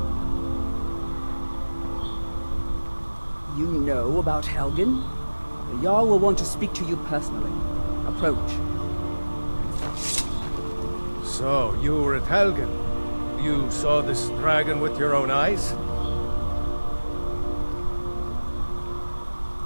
You know about Helgen? The Jarl will want to speak to you personally. Approach. So, you were at Helgen. You saw this dragon with your own eyes?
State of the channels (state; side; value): inverted; both; correlation -1.00